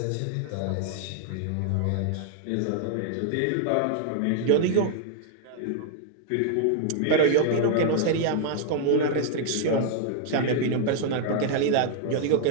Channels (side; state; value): both; different; correlation 0.00